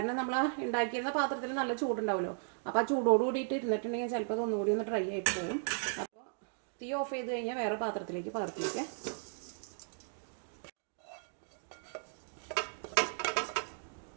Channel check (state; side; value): silent; left; digital silence